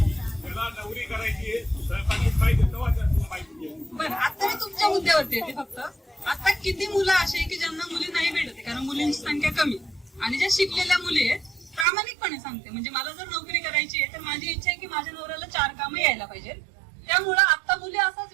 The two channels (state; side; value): drops out; left; at 11.9 s